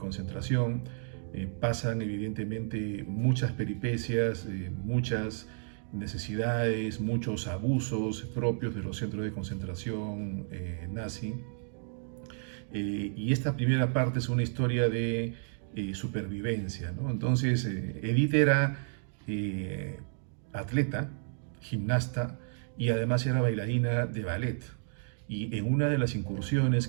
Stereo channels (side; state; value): left; silent; digital silence